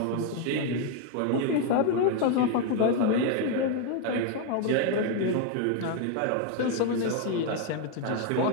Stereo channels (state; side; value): different; both; correlation 0.01